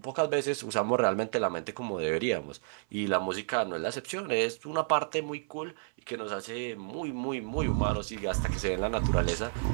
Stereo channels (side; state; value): left; silent; 57 dB below the other